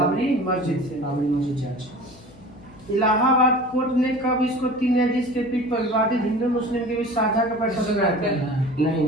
से। बाबरी मस्जिद जांच। इलाहाबाद कोर्ट ने कब इसको 3 न्यायाधीश के पीठ पर विवादित हिंदू मुस्लिम के बीच साझा का फैसला सुनाया था? नहीं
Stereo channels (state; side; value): noise; left; hum, 23 dB below the sound